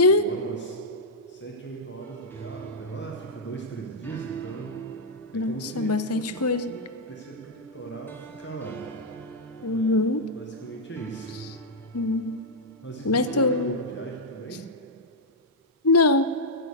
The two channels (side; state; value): both; normal; correlation -0.06